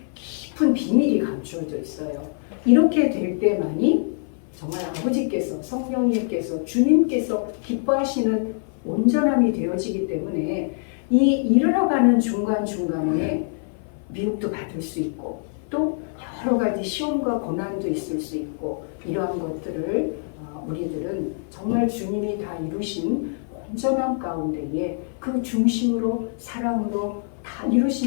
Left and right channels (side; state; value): right; silent; 55 dB below the other